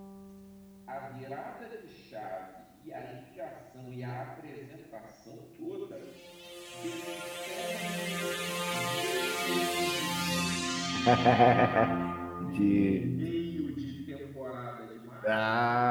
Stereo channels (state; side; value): identical; both; correlation 1.00